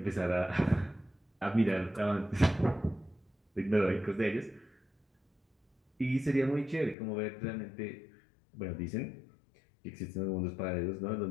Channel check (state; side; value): drops out; right; at 7.0 s